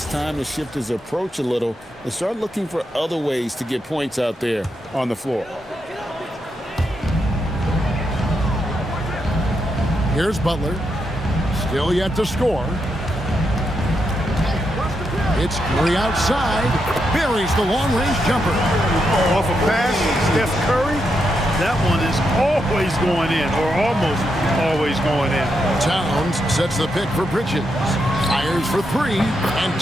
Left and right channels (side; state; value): both; normal; correlation 0.83